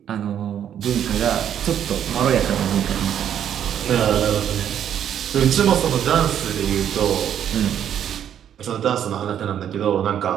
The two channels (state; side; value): quieter; left; 9.6 dB